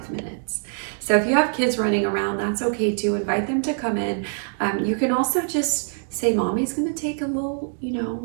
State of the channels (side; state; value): left; silent; digital silence